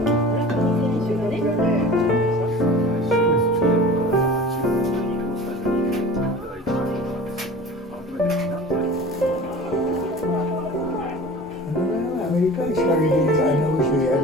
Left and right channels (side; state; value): both; normal; correlation 0.39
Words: アメリカに仕掛けて後ろやる